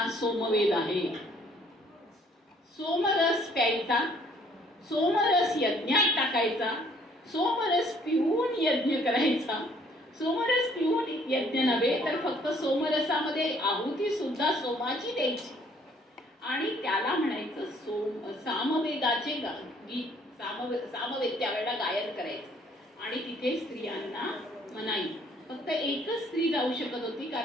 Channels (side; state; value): both; normal; correlation 0.61